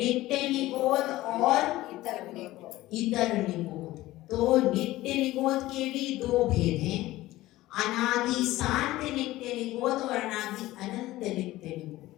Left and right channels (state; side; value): quieter; right; 17.0 dB